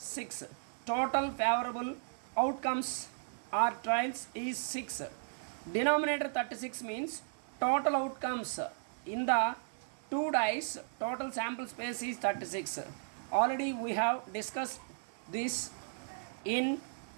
Total favorable outcomes or trials is 6. Denominator 36 means total outcomes in the 2 dice, total sample space is 36. Already we have discussed this in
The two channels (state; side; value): silent; left; 54 dB below the other